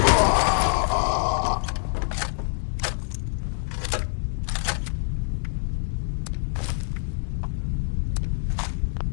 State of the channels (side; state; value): right; silent; digital silence